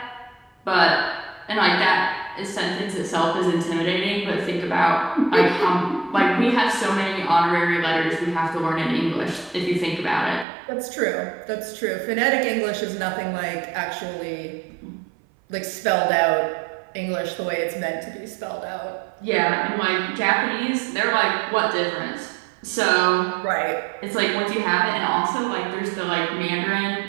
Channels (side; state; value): left; drops out; at 10.5 s